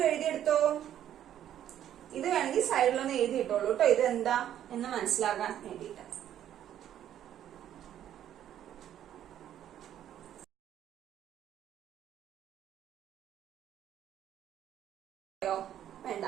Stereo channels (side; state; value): left; quieter; 10.9 dB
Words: എഴുതിയെടുത്തോ. ഇത് വേണമെങ്കിൽ സൈഡിലൊന്ന് എഴുതിയിട്ടോളൂ കേട്ടോ. ഇത് എന്താ എന്ന് മനസ്സിലാക്കാൻ വേണ്ടിയിട്ട്. വേണ്ട,